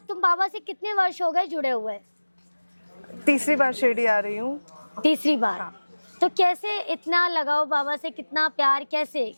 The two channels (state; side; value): inverted; both; correlation -1.00